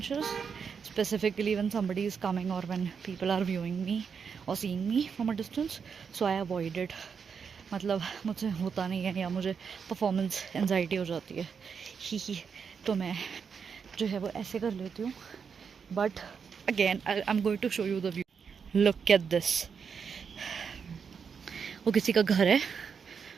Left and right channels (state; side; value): quieter; left; 6.3 dB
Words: specifically when somebody is coming or when people are viewing me or seeing me from a distance. So I avoid it. मतलब मुझसे होता नहीं है या मुझे performance anxiety हो जाती है ही, तो मैं जो है वो ऐसे कर लेती हूँ. But again I am going to show you the view. Look at this. वो किसी का घर है